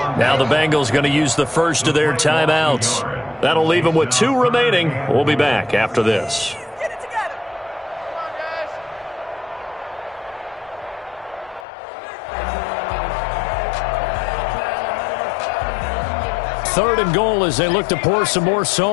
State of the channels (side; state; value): right; drops out; at 11.7 s